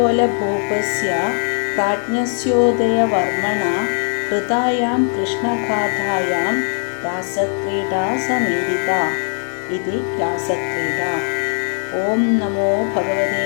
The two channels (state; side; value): silent; right; 66 dB below the other